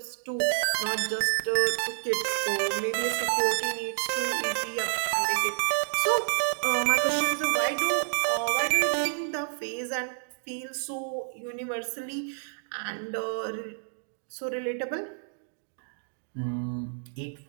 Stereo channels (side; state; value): left; silent; digital silence